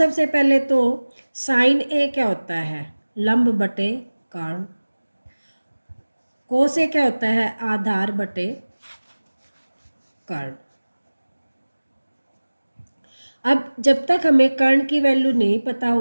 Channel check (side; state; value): both; inverted; correlation -1.00